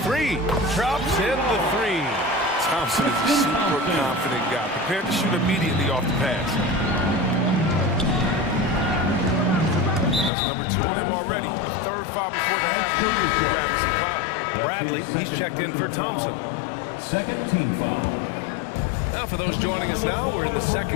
Drops in the 3. Thompson is a super confident guy, prepared to shoot immediately off the pass. That's number 2 on him already. A third foul before the half. Grabbing some time. Bradley, he's checked in for Thompson. Second team foul. Now for those joining us now, we're in the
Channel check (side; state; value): right; drops out; at 10.3 s